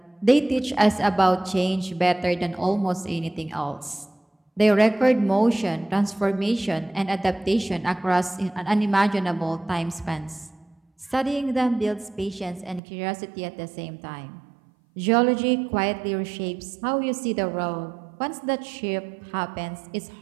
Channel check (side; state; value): left; drops out; at 12.8 s